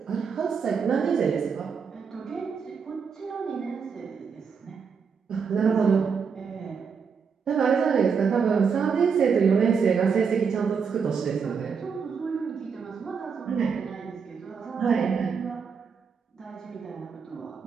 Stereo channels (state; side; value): quieter; left; 6.1 dB